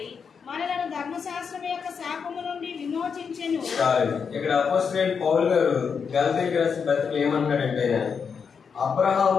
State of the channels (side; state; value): right; quieter; 6.2 dB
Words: మనలను ధర్మశాస్త్రం యొక్క శాపము నుండి విమోచించెను. ఇక్కడ అపోస్తలుడైన పౌలు గారు గలతీయులకు రాసిన పత్రికలో ఏమంటాడంటే,